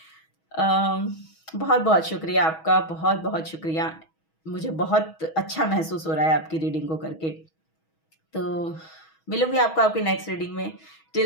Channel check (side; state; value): right; late; 6.2 ms